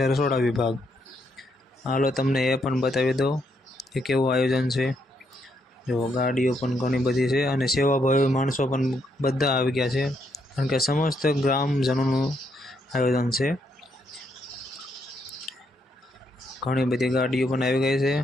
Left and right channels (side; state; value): both; normal; correlation 0.76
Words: રસોડા વિભાગ। હાલો તમને એ પણ બતાવી દો કે કેવું આયોજન છે। જો ગાડીઓ પણ ઘણી બધી છે અને સેવાભાવી માણસો પણ બધા આવી ગયા છે, કારણ કે સમસ્ત ગ્રામજનોનું આયોજન છે। ઘણી બધી ગાડીઓ પણ આવી ગઈ છે।